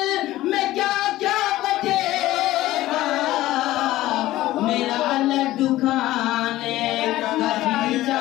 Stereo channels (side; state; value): right; quieter; 15.9 dB